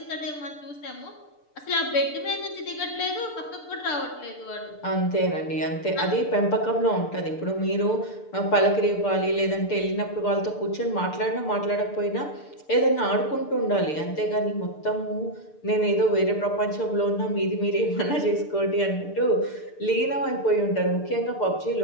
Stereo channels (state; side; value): late; right; 6.8 ms